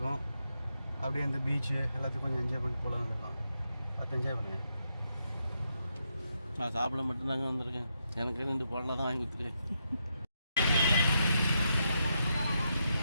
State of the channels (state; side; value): inverted; both; correlation -0.82